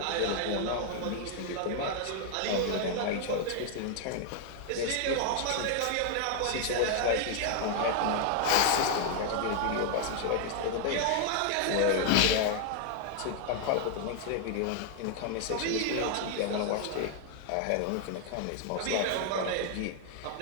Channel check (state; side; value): different; both; correlation 0.00